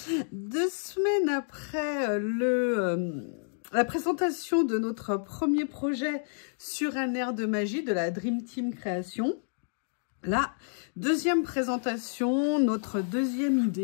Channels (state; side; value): silent; right; digital silence